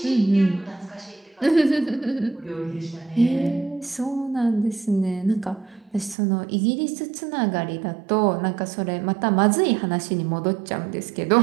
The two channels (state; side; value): drops out; left; at 6.2 s